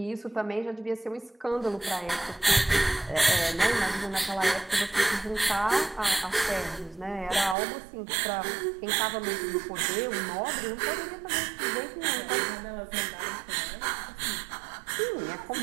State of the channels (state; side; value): drops out; left; at 7.6 s